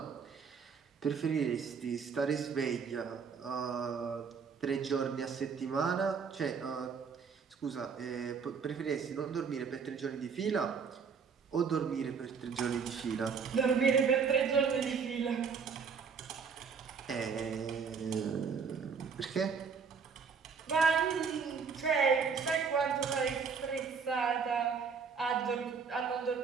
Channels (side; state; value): left; quieter; 5.9 dB